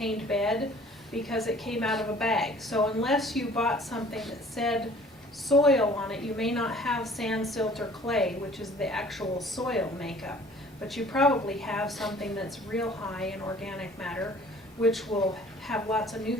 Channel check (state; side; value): normal; both; correlation 0.52